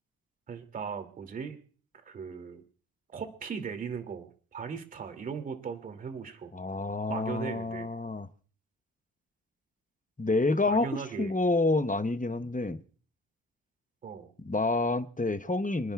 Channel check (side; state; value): both; normal; correlation 0.48